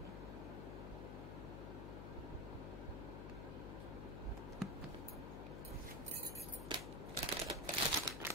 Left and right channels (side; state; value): left; noise; hum, 4 dB below the sound